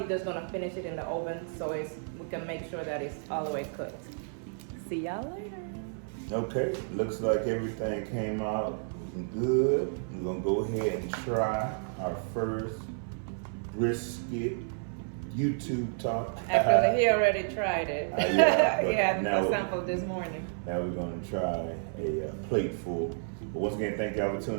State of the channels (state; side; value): silent; left; 56 dB below the other